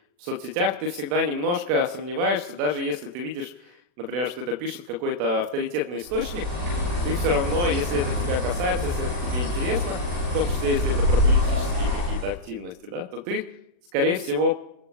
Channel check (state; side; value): late; left; 40 ms